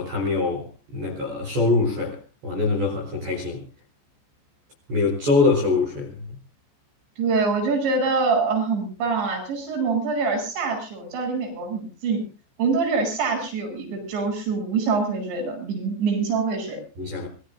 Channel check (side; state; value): left; late; 14 ms